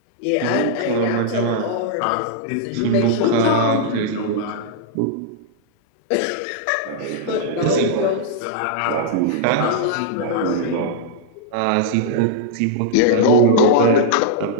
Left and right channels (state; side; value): different; both; correlation -0.02